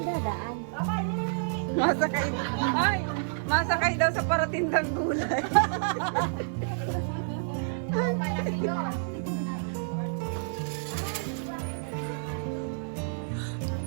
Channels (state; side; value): silent; left; digital silence